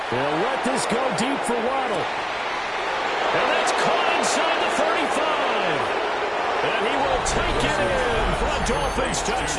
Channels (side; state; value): both; identical; correlation 1.00